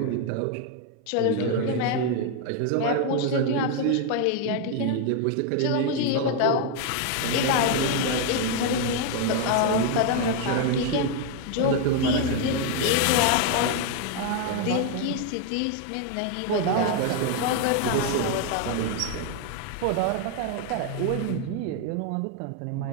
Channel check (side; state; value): both; different; correlation 0.01